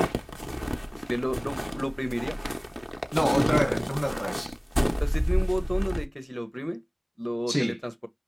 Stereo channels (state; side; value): identical; both; correlation 1.00